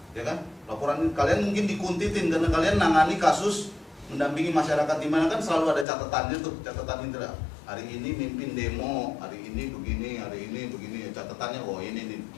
Ya kan? Laporan kalian mungkin dikuntitin karena kalian nangani kasus mendampingi masyarakat di mana kan selalu ada catatannya tuh, catatan indra. Hari ini mimpin demo, hari ini begini, hari ini begini. Catatannya, oh ini nih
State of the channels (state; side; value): drops out; right; at 5.9 s